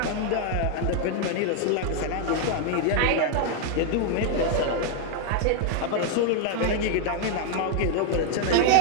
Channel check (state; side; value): different; both; correlation 0.00